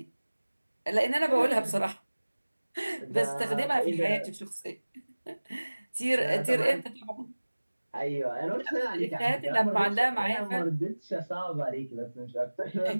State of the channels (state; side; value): inverted; both; correlation -1.00